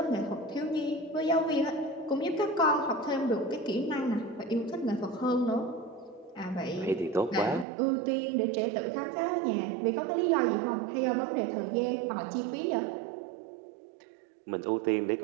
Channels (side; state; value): left; drops out; at 7.7 s